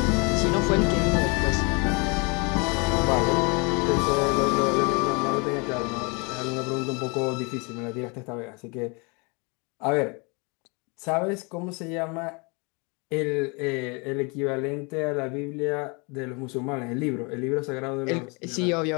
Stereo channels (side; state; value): right; quieter; 30.9 dB